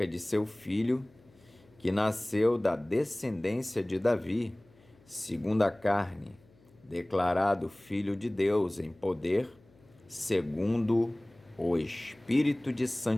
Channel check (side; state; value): left; noise; hum, 29 dB below the sound